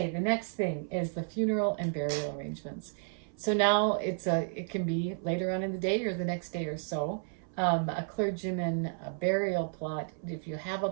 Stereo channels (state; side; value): silent; left; 56 dB below the other